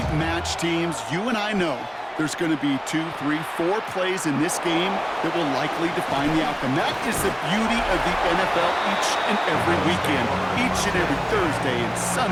matched teams. You and I know there's going to be 2, 3, 4 plays in this game that will likely define the outcome. That is the beauty of the NFL each and every weekend. Each and every Thursday and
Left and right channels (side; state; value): both; identical; correlation 1.00